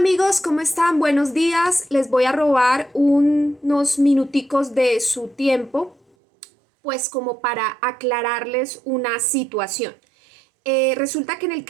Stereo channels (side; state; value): left; drops out; at 6.0 s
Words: ¿cómo están? Buenos días. Les voy a robar unos minuticos de su tiempo, pues como para aclararles una situación. Resulta que en el